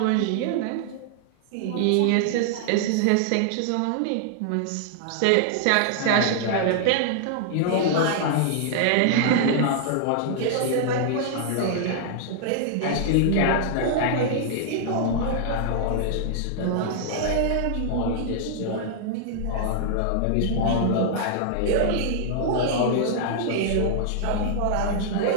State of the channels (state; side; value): different; both; correlation -0.01